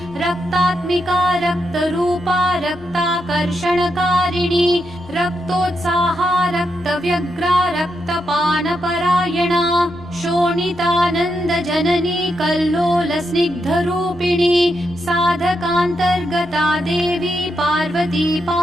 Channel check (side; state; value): right; noise; hum, 28 dB below the sound